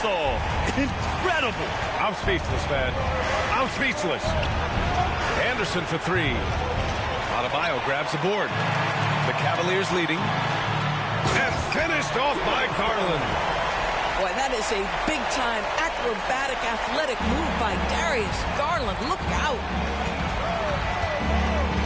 Incredible. I'm speechless, man. I'm speechless. Anderson for 3. Adebayo grabs the board. The Cavaliers leading. And finished off by Garland. Boy, that is a big-time acrobatic athletic move by Darius Garland. Look out.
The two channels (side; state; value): both; identical; correlation 1.00